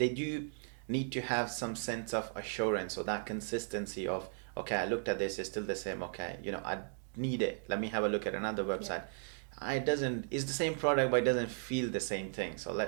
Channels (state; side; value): silent; left; digital silence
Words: do need to have some sense of assurance, or that consistency of, okay, I looked at this, it's still the same, okay, you know, I need it, let me have a look at another website. It's the same product, but it doesn't feel the same thing. So